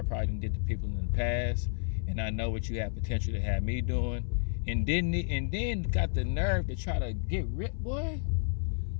probably did to people in the past, and I know what you have potential to have me doing. And then got the nerve to try to get rid, boy.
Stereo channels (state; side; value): silent; right; 57 dB below the other